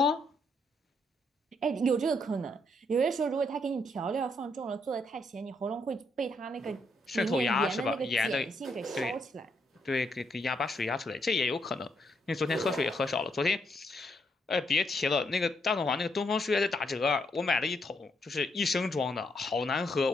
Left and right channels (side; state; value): both; normal; correlation 0.75